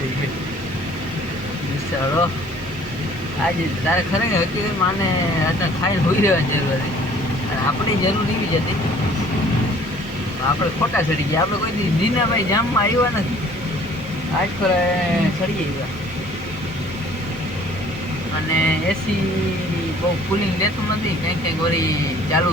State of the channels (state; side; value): normal; both; correlation 0.54